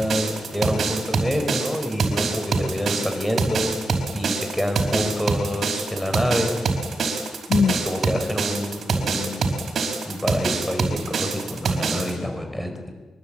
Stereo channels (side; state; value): both; normal; correlation 0.87